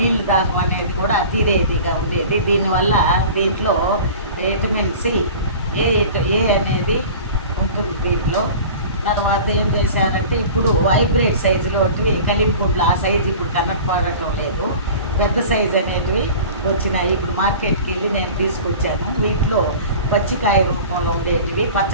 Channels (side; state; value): both; inverted; correlation -0.40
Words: దాహం అనేది కూడా తీరేదిగా ఉండేది. దీనివల్ల దీంట్లో విటమిన్ సి ఏ అనేది ఉంటుంది దీంట్లో. తర్వాత ఏం చేశారంటే ఇప్పుడు హైబ్రిడ్ సైజులో కలింపుండ్లు ఆ సైజు ఇప్పుడు కనపడటం లేదు. పెద్ద సైజు అనేటివి వచ్చినాయి. ఇప్పుడు మార్కెట్కి వెళ్ళి నేను తీసుకొచ్చాను. వీటిలో పచ్చికాయ రూపంలో ఉండేటివి